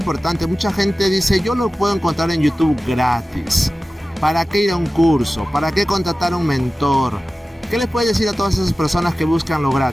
Mucha gente dice, yo lo puedo encontrar en YouTube gratis. ¿Para qué ir a un curso? ¿Para qué contratar a un mentor? ¿Qué les puedes decir a todas esas personas que buscan lo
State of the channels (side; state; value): both; normal; correlation 0.96